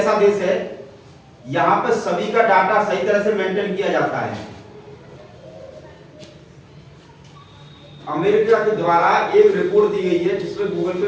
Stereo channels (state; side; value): identical; both; correlation 1.00